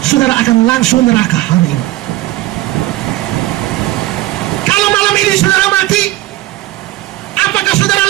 saudara akan langsung neraka hari ini. Kalau malam ini saudara mati, apakah saudara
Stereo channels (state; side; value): quieter; left; 16.6 dB